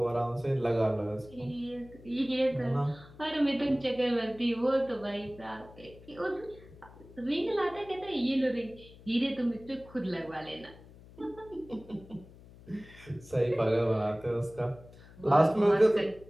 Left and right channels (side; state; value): left; noise; hum, 21 dB below the sound